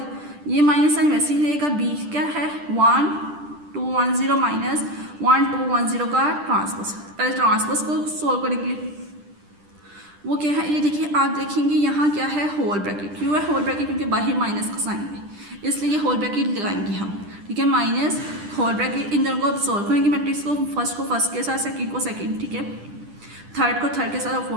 ये माइनस साइन वैसे ही रहेगा। B क्या है, 1 2 1 0 माइनस 1 2 1 0 का ट्रांसपोज। पहले ट्रांसपोज को सोल्व करेंगे, वो क्या है, ये देखिए आप देखेंगे यहाँ क्या है, होल ब्रैकेट। क्यों है होल ब्रैकेट, क्योंकि बाहर माइनस का साइन है, इसलिए होल ब्रैकेट लगाएंगे हम। ठीक है, माइनस होल ब्रैकेट। इन दोनों को अब सोल्व करेंगे मैट्रिक्स को, फर्स्ट को फर्स्ट के साथ, सेकंड को सेकंड। ठीक है, थर्ड को थर्ड के साथ और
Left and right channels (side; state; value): left; late; 10 ms